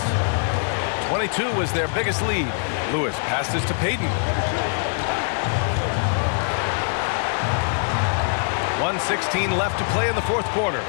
22 was their biggest lead. Lewis passes to Payton. 1:16 left to play in the 4th quarter.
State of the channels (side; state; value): right; silent; digital silence